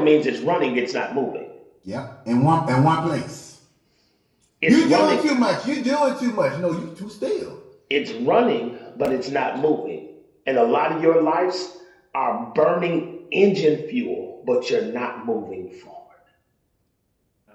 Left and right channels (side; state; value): both; identical; correlation 1.00